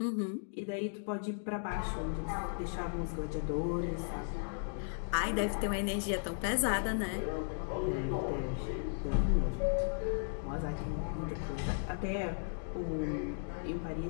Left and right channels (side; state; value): right; silent; digital silence